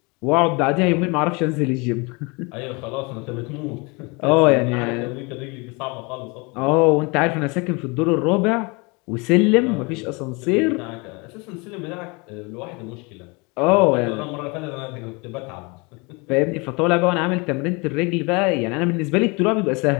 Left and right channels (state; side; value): quieter; right; 28.6 dB